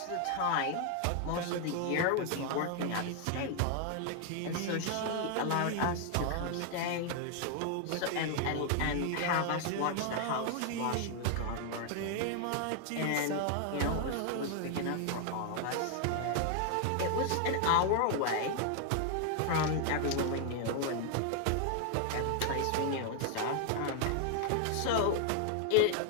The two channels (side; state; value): both; different; correlation 0.00